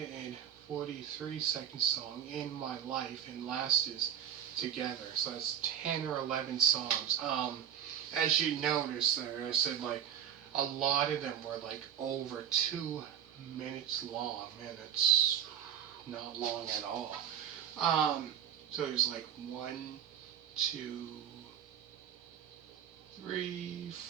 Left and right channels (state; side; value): quieter; left; 9.4 dB